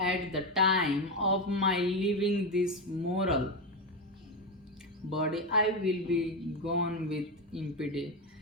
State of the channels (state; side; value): normal; both; correlation 0.12